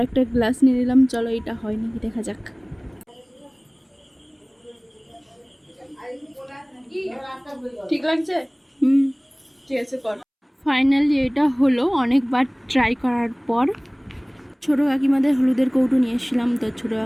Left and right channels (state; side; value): identical; both; correlation 1.00